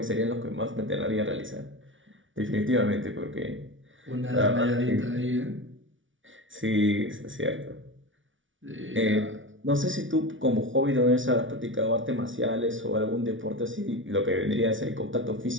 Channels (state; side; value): late; left; 0.56 ms